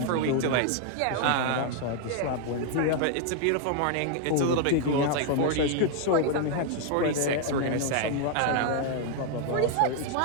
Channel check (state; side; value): different; both; correlation 0.00